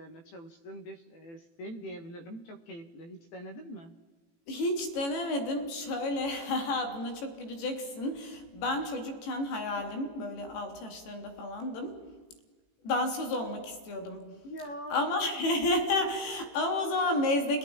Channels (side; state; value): right; late; 18 ms